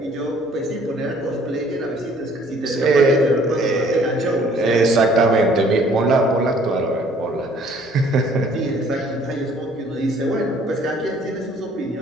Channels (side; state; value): both; normal; correlation 0.58